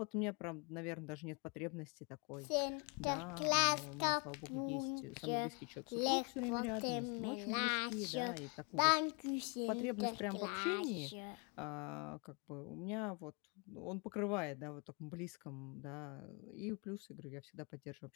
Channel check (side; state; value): right; quieter; 34.3 dB